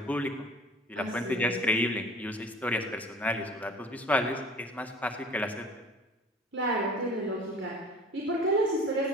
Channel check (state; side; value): normal; both; correlation 0.45